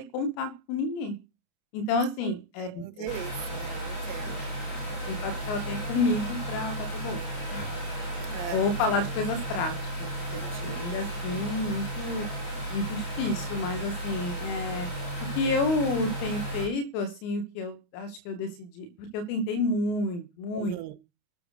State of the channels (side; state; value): right; late; 29 ms